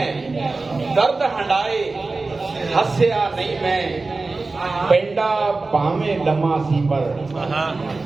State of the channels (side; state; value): left; quieter; 3.6 dB